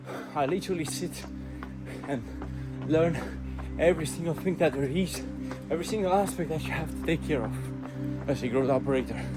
I literally sit and learn every single thing that there is, every single aspect that you have to take care of as a growth operator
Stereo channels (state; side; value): identical; both; correlation 1.00